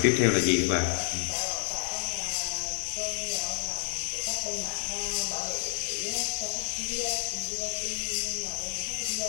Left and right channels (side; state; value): right; silent; 58 dB below the other